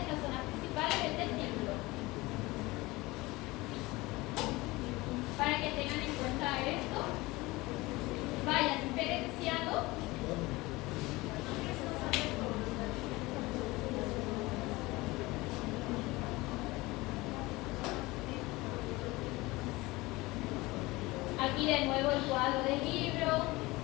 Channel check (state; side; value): quieter; right; 21.3 dB